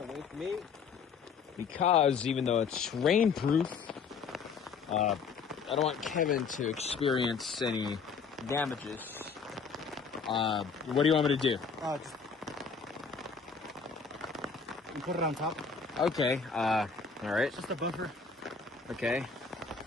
away from me because even though it's rainproof, I don't want Kevin to experience any damages. What do you want me to do? Just you put it on top. Okay. All right. It's just a buffer. Okay.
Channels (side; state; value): right; quieter; 5.5 dB